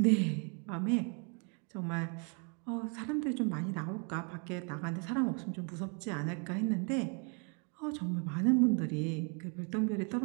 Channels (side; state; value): left; quieter; 37.4 dB